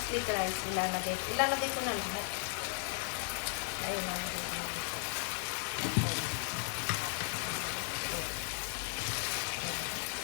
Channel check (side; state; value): right; silent; 54 dB below the other